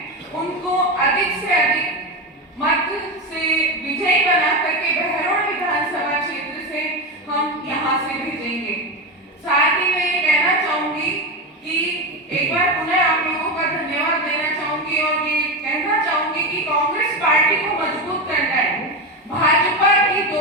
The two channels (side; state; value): both; normal; correlation 0.17